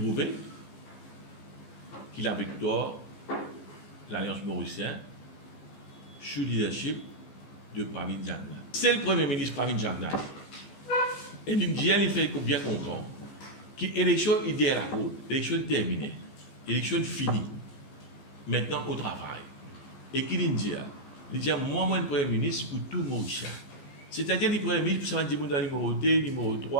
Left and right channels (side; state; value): right; late; 14 ms